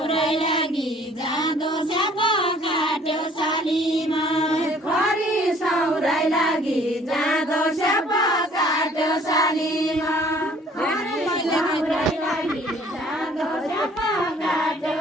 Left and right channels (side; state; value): both; normal; correlation 0.56